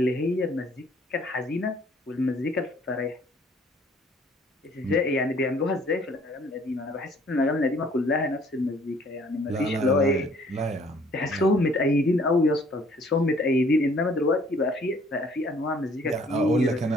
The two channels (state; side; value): normal; both; correlation 0.59